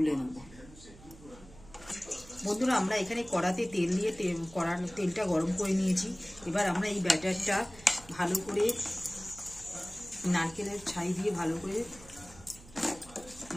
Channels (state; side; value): noise; right; hum, 20 dB below the sound